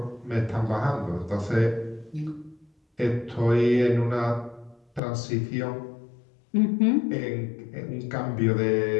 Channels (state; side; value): drops out; right; at 5.0 s